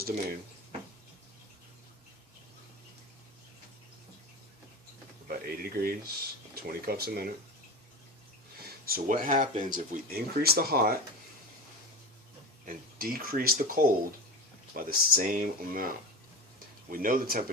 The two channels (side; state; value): both; normal; correlation 0.28